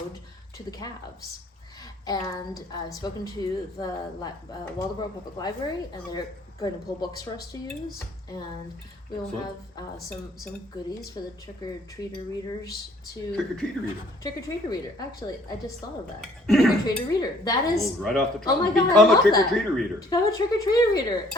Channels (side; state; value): both; normal; correlation 0.59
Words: to the Calves. And I've spoken to the Waldoboro Public Library, and they're going to pull books for us to use, and we will have some goodies for the trick-or-treater readers to... Trick-or-treater reader. Trick-or-treater reader. Actually, I just thought of that. Trick-or-treater reader. That is... Right off the top. Oh my God, I Become a love that. trick-or-treater reader. Become a trick-or-treater reader.